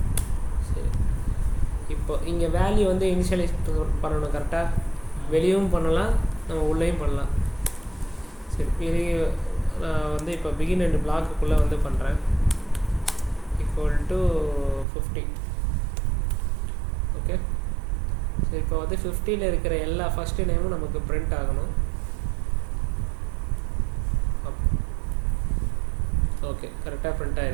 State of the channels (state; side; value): drops out; left; at 14.9 s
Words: சரி இப்போ இங்கே வேல்யூ வந்து இனிஷியலைஸ் பண்ணணும் கரெக்டாக வெளியும் பண்ணலாம் நம்ம உள்ளேயும் பண்ணலாம் சரி பெரிய நான் வந்து இப்போ பிகின் அண்ட் பிளாக்குள்ளே வந்து பண்ணுறேன் ஈக்குவல் டு 50 ஓகே சரி இப்போ வந்து 50ல் இருக்கிற எல்லா ஃபஸ்ட்டு நேமும் நமக்கு பிரிண்ட் ஆகணும் ஓகே கரெக்டாக பிரிண்ட்